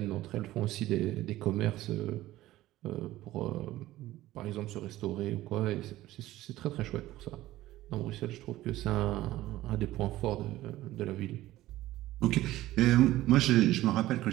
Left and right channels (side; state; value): left; quieter; 15.8 dB